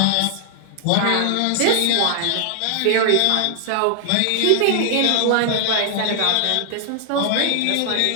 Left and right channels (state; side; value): different; both; correlation 0.00